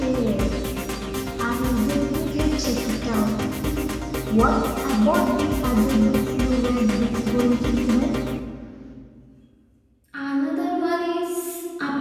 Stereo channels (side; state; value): both; identical; correlation 1.00